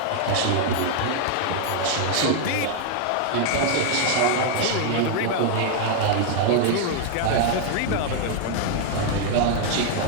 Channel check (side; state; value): both; different; correlation 0.00